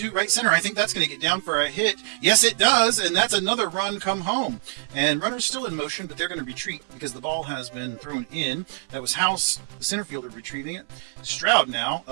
right center. I think that's going to get down for a hit. Yes, it does, and that's another run come home. And runners still in motion, but they're going to retreat because the ball has been thrown in. That was House, the center fielder, retrieving it. Stroud now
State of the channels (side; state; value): left; silent; 62 dB below the other